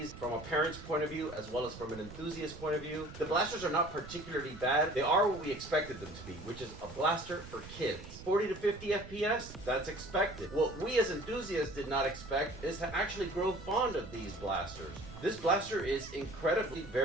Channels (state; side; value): noise; right; rumble, 14 dB below the sound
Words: from a parent's point of view as well as from an enthusiast point of view. The blasters are not particularly bad. They are what we expected them to be, which is a blaster for kids. 40 to 50 FPS, that's expected. What we as enthusiasts did not expect is to actually grow fond of these blasters. This blaster is incredibly